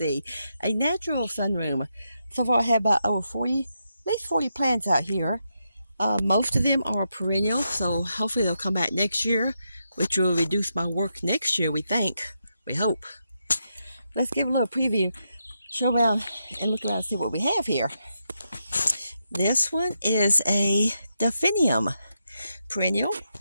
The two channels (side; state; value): both; inverted; correlation -0.83